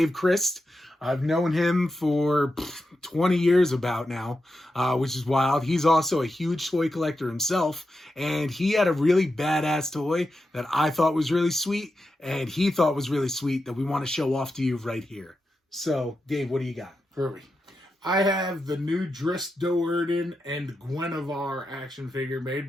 Christ. I've known him for 20 years about now, which is wild. He's also a huge toy collector himself, and he had a really badass toy that I thought was really sweet, and he thought was really sweet that we want to show off to you right here. So, Dave, what do you got? Hurry. I have the new Drizzt Guenhwyvar and Guenhwyvar action figure made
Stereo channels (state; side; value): normal; both; correlation 0.88